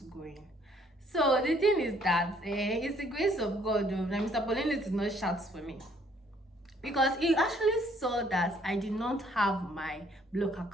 go in. So the thing is that it's the grace of God that Mr. Paulinus did not shout for me, because he actually saw that I did not have my block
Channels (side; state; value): both; normal; correlation 0.64